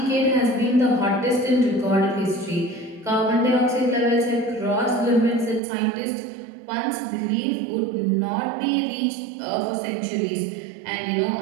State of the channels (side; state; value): left; drops out; at 5.6 s